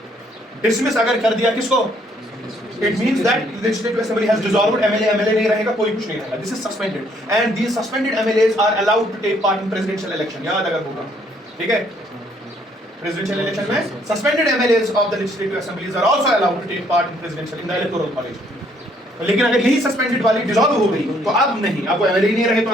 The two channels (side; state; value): both; normal; correlation 0.66